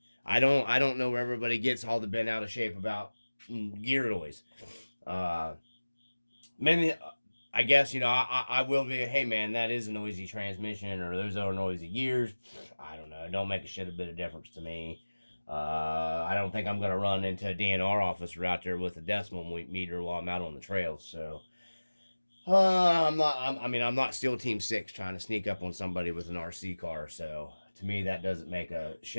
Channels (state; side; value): inverted; both; correlation -1.00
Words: don't know where everybody gets all the bent out of shape about gear noise. I guess, I will be, hey man, that is a noisy transmission, or those are noisy gears. I don't know. It don't make a bit of difference to me. I don't think I'm going to run into a DNR officer out there with a decimal meter while I'm out on the trails. So, I'm not SEAL Team 6 trying to sneak up on somebody with an RC car. So, to me, that doesn't make a